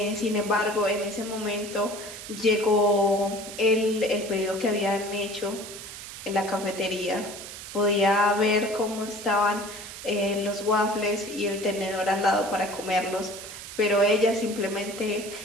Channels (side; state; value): right; noise; hiss, 12 dB below the sound